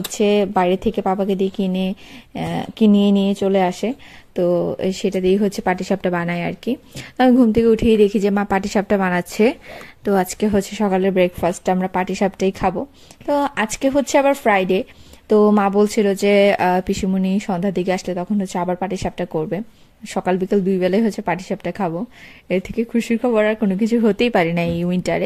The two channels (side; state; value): both; identical; correlation 1.00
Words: বাইরে থেকে পাপাকে দিয়ে কিনিয়ে নিয়ে চলে আসে। তো সেটা দিয়ে হচ্ছে পাটিসাপটা বানায় আর কি। আমি ঘুম থেকে উঠেই দেখি যে মা পাটিসাপটা বানাচ্ছে। তো আজকে হচ্ছে সকালের ব্রেকফাস্ট আমরা পাটিসাপটাই খাবো। তো আজকে হচ্ছে আবার ফ্রাইডে। তো মা বলছিল যে পিসিমণি সন্ধ্যার দিকে আসলে তখন হচ্ছে আবার পাটিসাপটা করবে। সকাল বিকাল দুই বেলায় হচ্ছে পাটিসাপটা খাবো। এর থেকে খুশির খবর আর কোনো কিছু হতেই পারে না এই